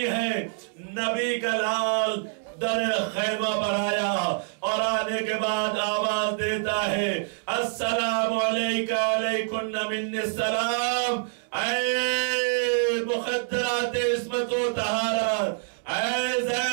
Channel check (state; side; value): silent; left; digital silence